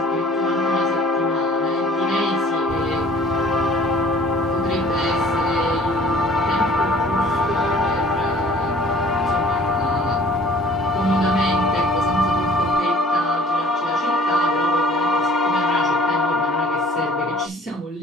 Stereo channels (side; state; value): both; normal; correlation 0.52